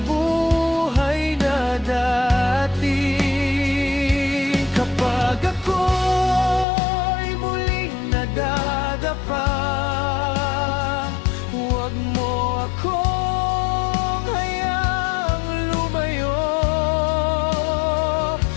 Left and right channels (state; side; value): drops out; right; at 6.7 s